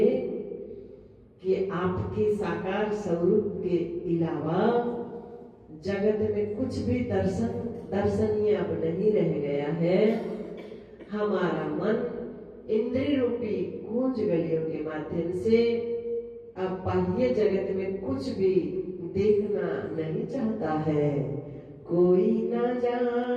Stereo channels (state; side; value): identical; both; correlation 1.00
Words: कि आपके साकार स्वरूप के अलावा जगत में कुछ भी दर्शनीय अब नहीं रह गया है। हमारा मन इंद्रिय रूपी कुंज गलियों के माध्यम से अब बाह्य जगत में कुछ भी देखना नहीं चाहता है। कोई ना